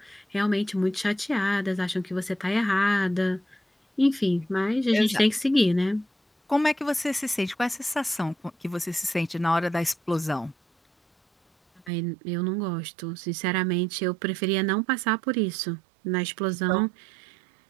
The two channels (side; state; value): left; drops out; at 11.9 s